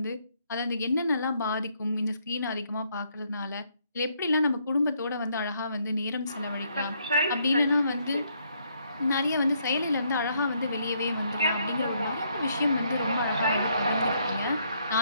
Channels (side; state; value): both; inverted; correlation -0.71